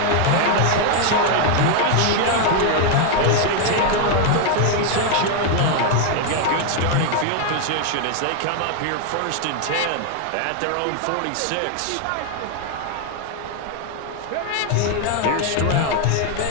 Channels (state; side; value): different; both; correlation 0.01